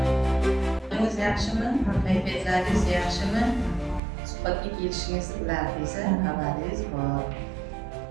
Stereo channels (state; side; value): drops out; left; at 4.0 s